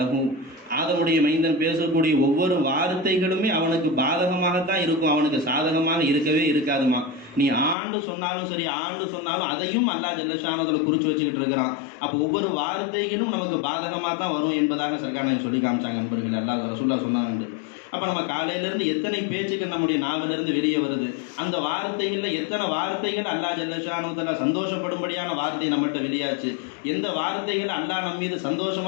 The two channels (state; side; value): drops out; right; at 7.8 s